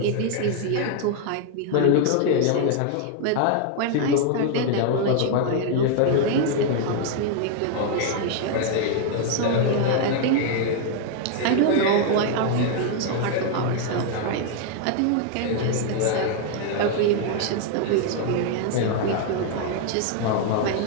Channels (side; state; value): both; different; correlation 0.01